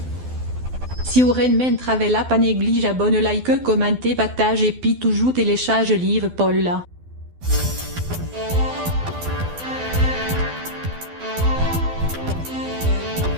Si vous men travella pas néglige abonne like commentez partage et puis toujours télécharge livre Paul là.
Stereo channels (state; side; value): late; left; 12 ms